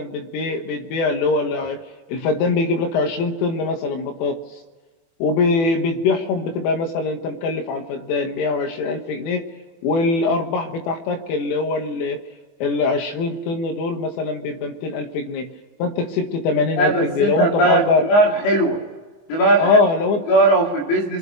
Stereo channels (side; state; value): right; late; 24 ms